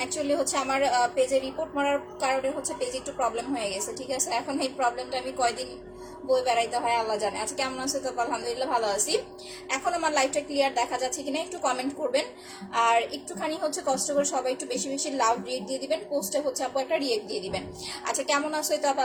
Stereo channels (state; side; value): identical; both; correlation 1.00